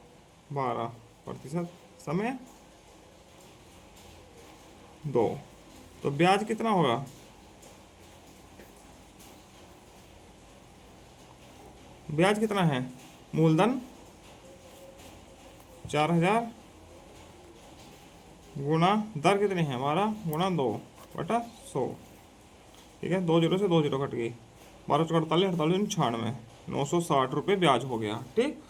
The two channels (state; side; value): identical; both; correlation 1.00